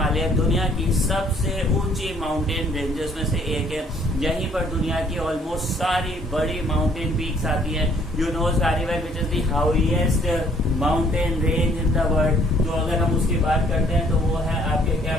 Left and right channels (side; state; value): both; normal; correlation 0.62